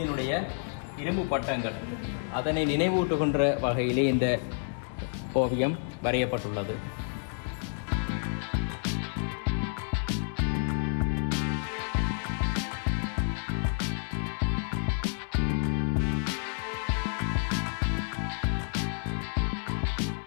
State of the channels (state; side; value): silent; right; digital silence